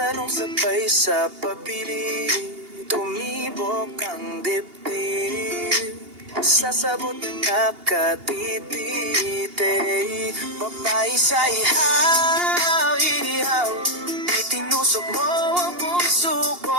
sabay sa pabili, tumibok ang dibdib. Sasabot na nakatititi. Babae sa ihaw, ihaw, itinusok mo ang puso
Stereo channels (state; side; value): late; left; 2.8 ms